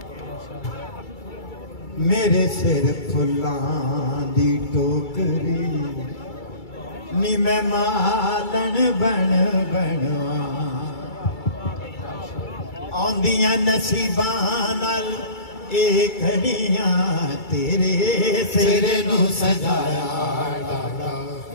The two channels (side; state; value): right; late; 2.3 ms